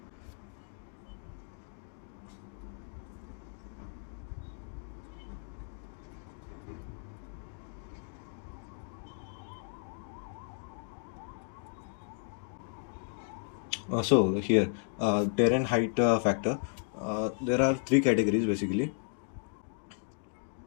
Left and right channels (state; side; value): silent; right; 55 dB below the other